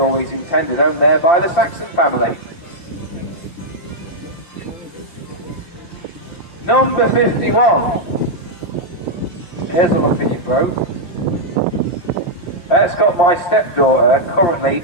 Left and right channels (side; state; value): right; late; 5.8 ms